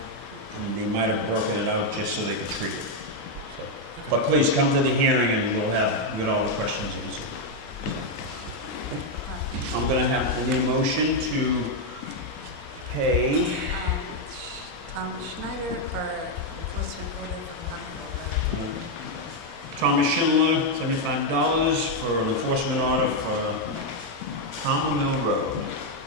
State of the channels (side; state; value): both; normal; correlation 0.01